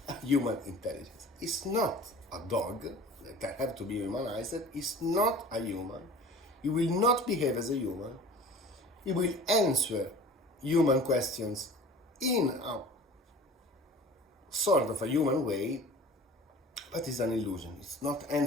human intelligence. It's not a dog that have to be humanized. It's not a human. It will not behave as a human. It will answer human questions in a sort of a human way, but it's an illusion. It's not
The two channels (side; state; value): both; normal; correlation 0.42